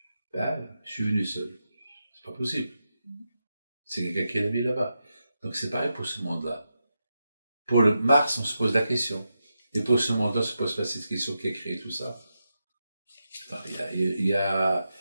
Ben, je suis venu seul. C'est pas possible. C'est quelqu'un qui est mis là-bas. Donc c'est pareil pour ce monde-là. Pour le Mars, on se pose la question. Et pour ce monde-là, on se pose pas cette question qui a créé tout ça. Il y a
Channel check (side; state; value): both; inverted; correlation -0.87